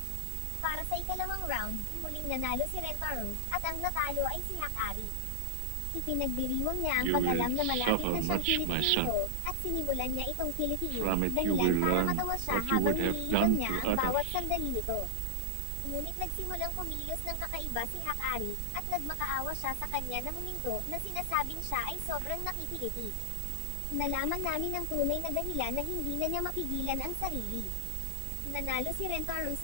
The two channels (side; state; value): both; different; correlation -0.01